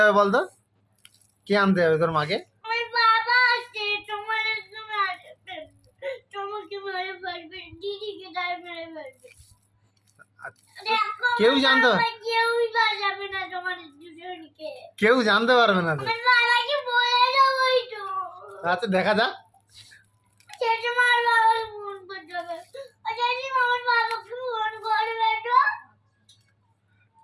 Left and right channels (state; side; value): identical; both; correlation 1.00